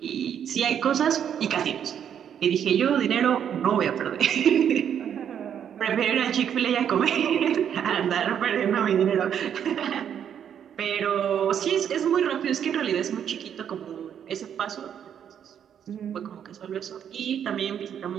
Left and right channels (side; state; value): left; quieter; 8.8 dB